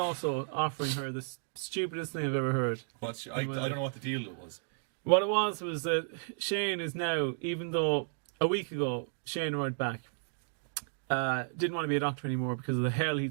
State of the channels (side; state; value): left; silent; digital silence